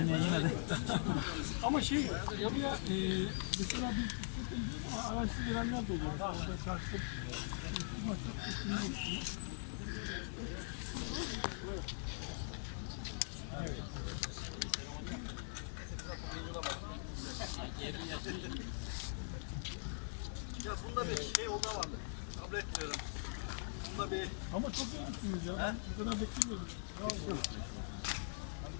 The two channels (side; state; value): right; silent; digital silence